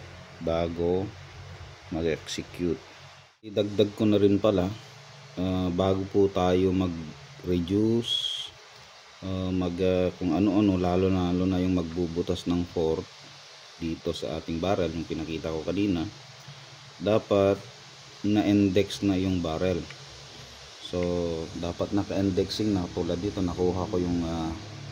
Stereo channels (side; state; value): both; identical; correlation 1.00